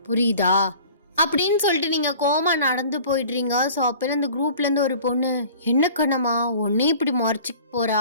புரியுதா? அப்படின்னு சொல்லிட்டு நீங்கள் கோமா நடந்து போயிடுறீங்க. ஸோ அப்போ அந்த குரூப்லேருந்து ஒரு பொண்ணு, என்ன கண்ணம்மா ஒன்னே இப்படி முறைச்சிக்கு போகிறா?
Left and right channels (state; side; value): inverted; both; correlation -0.45